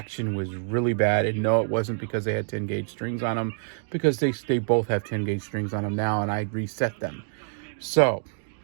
was really bad. And no, it wasn't because they had 10 gauge strings on them, because they both have 10 gauge strings on them now, and I reset them. So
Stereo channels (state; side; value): silent; left; digital silence